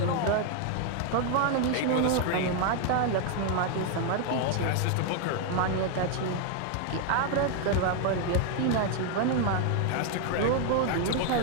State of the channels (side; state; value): both; different; correlation 0.01